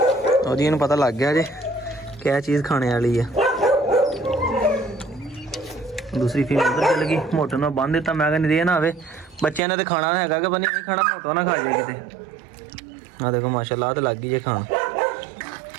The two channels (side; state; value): left; drops out; at 9.6 s